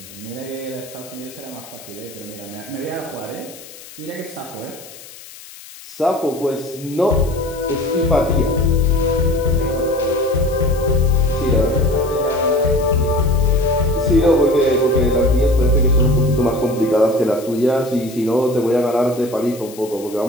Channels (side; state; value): left; noise; hiss, 18 dB below the sound